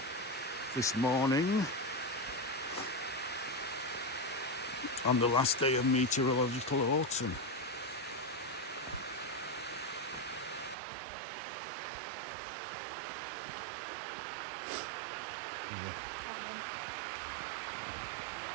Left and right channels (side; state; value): left; drops out; at 10.8 s